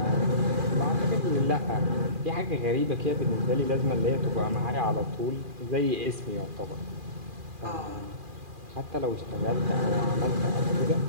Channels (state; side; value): late; left; 2.4 ms